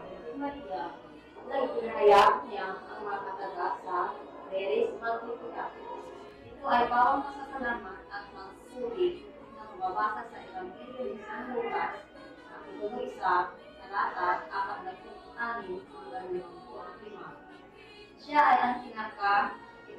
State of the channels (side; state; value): both; identical; correlation 1.00